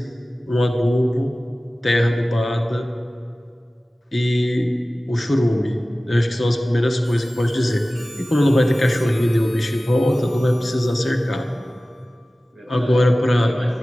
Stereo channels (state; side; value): normal; both; correlation 0.97